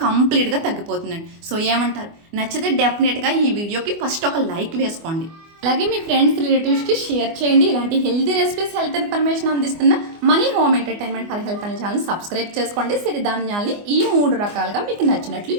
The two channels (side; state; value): left; late; 24 ms